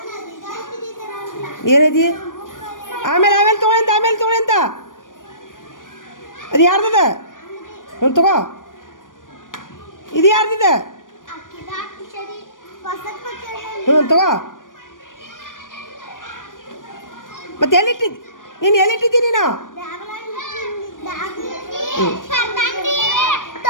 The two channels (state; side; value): late; right; 0.88 ms